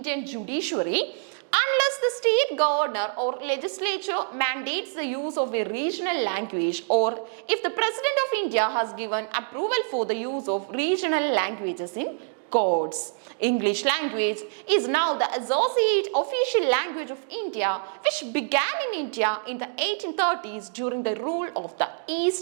judiciary unless the state governor or legislature mandates the use of a regional language, or if the President of India has given approval for the use of regional languages in courts. English language is now the associate official language of India, which began in India in the 1830s during the rule of the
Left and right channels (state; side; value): silent; left; 61 dB below the other